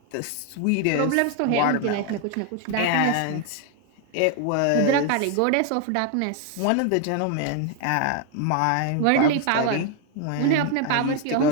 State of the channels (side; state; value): both; different; correlation 0.00